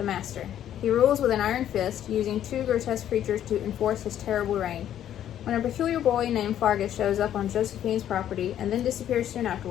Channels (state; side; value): quieter; right; 10.9 dB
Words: Master. He rules with an iron fist, using two grotesque creatures to enforce his terrible reign. When a peculiar boy named Fargus shows up on Josephine's property and then disappears soon